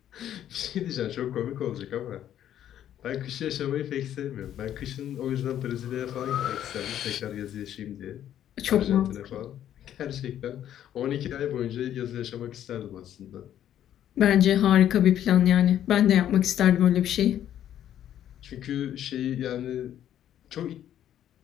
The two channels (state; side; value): quieter; right; 10.9 dB